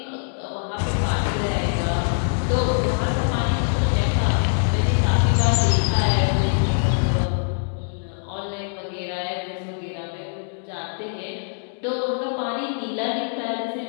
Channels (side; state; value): right; silent; digital silence